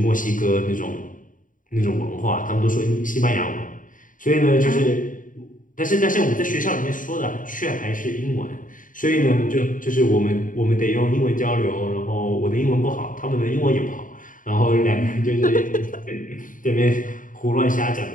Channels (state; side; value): late; right; 0.39 ms